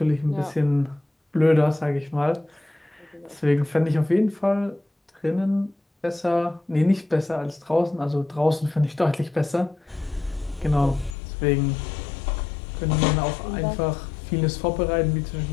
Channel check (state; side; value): drops out; right; at 11.2 s